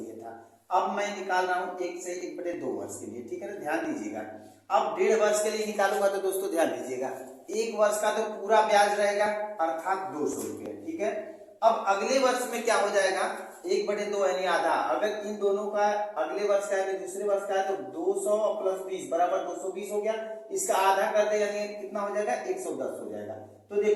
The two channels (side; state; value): both; identical; correlation 1.00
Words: था। अब मैं निकाल रहा हूँ 1 से 1/2 वर्ष के लिए। ठीक है ना, ध्यान दीजिएगा। अब 1.5 वर्ष के लिए निकालूंगा तो दोस्तों ध्यान दीजिएगा, 1 वर्ष का तो पूरा ब्याज रहेगा, अर्थात 200 रुपये। ठीक है, अब अगले वर्ष में क्या हो जाएगा, 1/2 यानी आधा। अगर इन दोनों का अगले वर्ष का है दूसरे वर्ष का है तो 200 प्लस 20 बराबर 220 हो गया, इसका आधा कर दे यानी कितना हो जाएगा, 110 हो जाएगा। तो